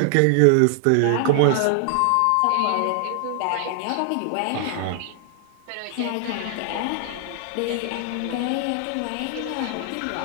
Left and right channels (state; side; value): different; both; correlation 0.00